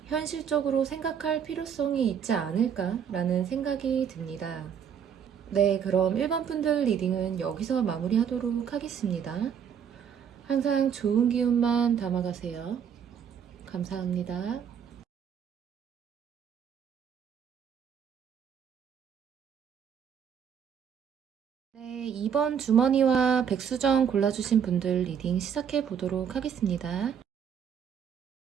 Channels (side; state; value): left; quieter; 7.9 dB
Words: 현실적으로 생각할 필요성이 있지 않을까라는 생각이 듭니다. 네, 그럼 1번 분들 리딩은 여기서 마무리하도록 하겠습니다. 항상 좋은 기운만 담아가세요. 감사합니다. 네, 2번 주머니와 백수정 골라주신 분들 리딩 시작해 보도록 하겠습니다.